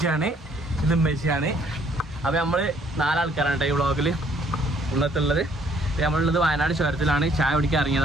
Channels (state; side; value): normal; both; correlation 0.63